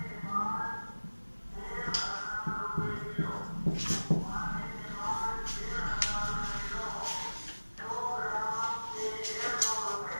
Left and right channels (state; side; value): inverted; both; correlation -1.00